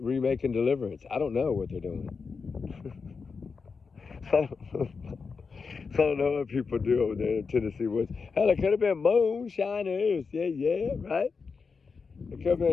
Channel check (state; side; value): quieter; right; 5.1 dB